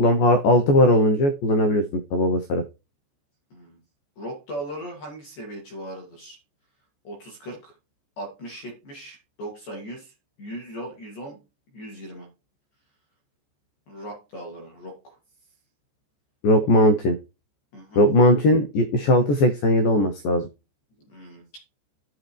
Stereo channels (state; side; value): late; right; 14 ms